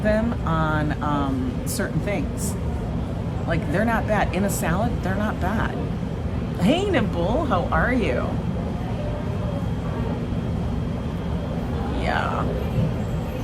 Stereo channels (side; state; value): both; identical; correlation 1.00